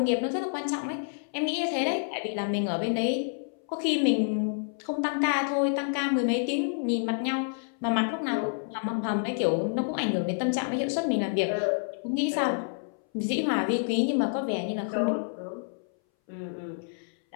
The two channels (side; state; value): right; silent; 59 dB below the other